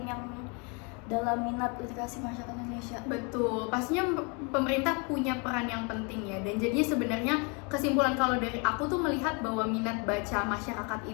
yang dalam minat literasi masyarakat Indonesia. Betul, pastinya pemerintah punya peran yang penting ya. Dan jadinya sebenarnya kesimpulan kalau dari aku tuh melihat bahwa minat baca masyarakat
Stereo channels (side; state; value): right; quieter; 33.1 dB